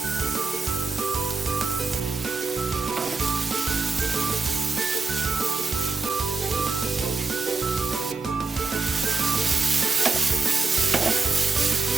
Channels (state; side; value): quieter; left; 4.2 dB